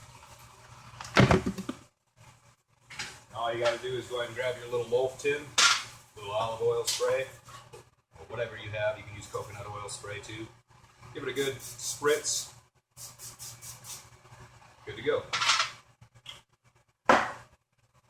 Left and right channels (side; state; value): both; identical; correlation 1.00